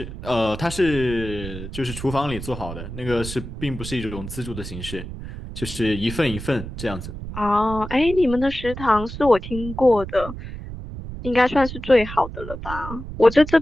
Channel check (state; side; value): noise; right; rumble, 10 dB below the sound